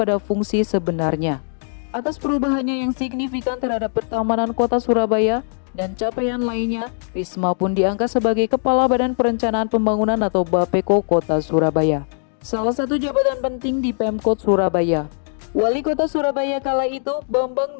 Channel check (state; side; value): silent; right; digital silence